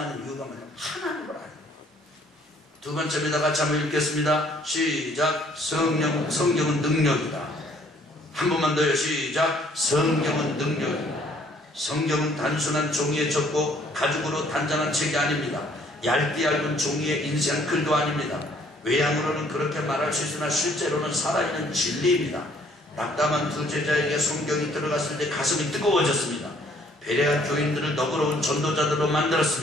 이유가 뭐냐면 하나님을 알아요. 두 번째입니다. 같이 한번 읽겠습니다. 시작. 성경은 능력이다. 한 번만 더요. 시작. 성경은 능력이다. 성경은 단순한 종이에 적고 가죽으로 단장한 책이 아닙니다. 얇디 얇은 종이의 인생 글도 아닙니다. 외양으로는 그렇게 말할 수 있으나 실제로는 살아있는 진리입니다. 낙담한 두 제자에게 성경이 들어갔을 때 가슴이 뜨거워졌습니다. 베레아 교인들을 너그러운 전도자들로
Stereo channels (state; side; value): normal; both; correlation 0.62